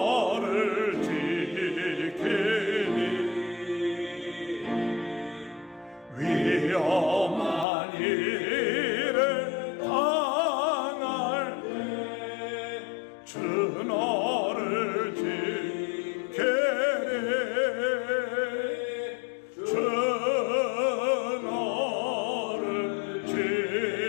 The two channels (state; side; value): drops out; right; at 7.7 s